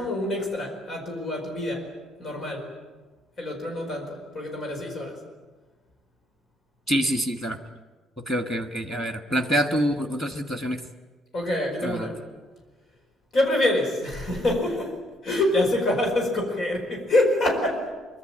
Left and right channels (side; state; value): both; normal; correlation 0.70